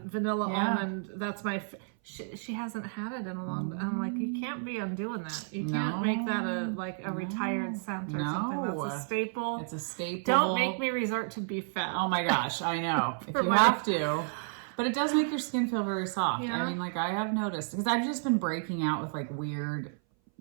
vanilla almond. That's my. She hasn't had it in a long time. I'm like, you can't be undoing that. You can't make that a retired scent or something. That's a staple. It's a staple. Don't make me resort to beef fat. Oh my gosh, I know. If you have to. But it does make your skin feel very soft. Yeah. I mean, I have noticed. Because I've just been breaking out with weird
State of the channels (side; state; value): left; silent; 57 dB below the other